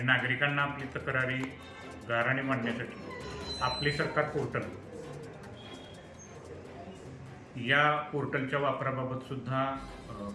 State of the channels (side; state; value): both; identical; correlation 1.00